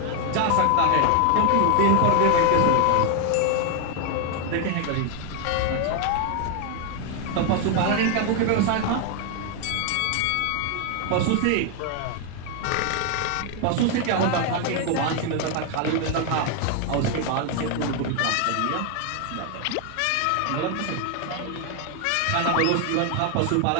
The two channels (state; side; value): different; both; correlation 0.01